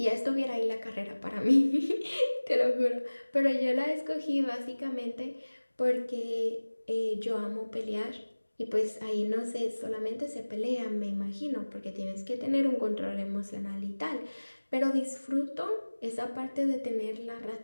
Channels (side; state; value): both; inverted; correlation -1.00